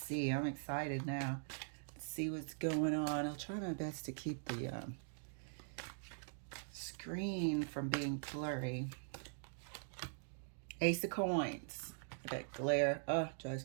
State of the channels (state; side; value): silent; left; digital silence